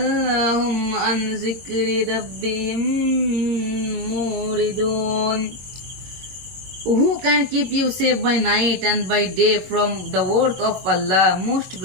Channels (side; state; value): left; late; 22 ms